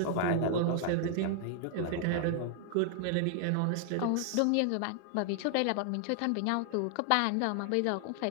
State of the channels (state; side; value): different; both; correlation 0.00